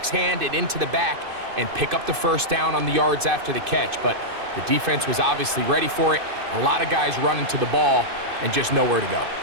hand and into the back and pick up the first down on the yards after the catch. But the defense was obviously ready for it. A lot of guys running to the ball and just nowhere to go.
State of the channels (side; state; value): left; late; 2.5 ms